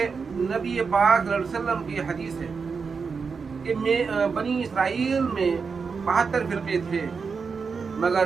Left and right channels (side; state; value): left; quieter; 5.3 dB